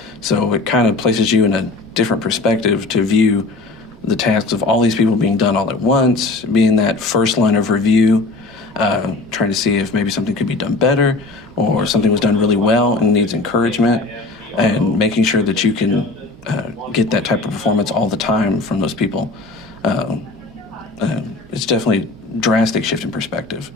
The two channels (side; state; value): right; quieter; 3.4 dB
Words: So it kind of places you in a different perspective to view the tasks of all these people being done all at once, being that first line of review, trying to see if maybe something could be done better or something was done really well and needs encouragement, and making sure that you can get that type of performance all the time from those people. It's definitely a drastic shift in perspective.